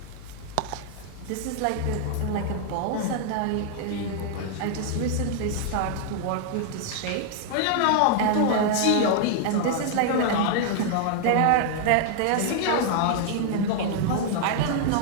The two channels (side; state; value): both; different; correlation 0.00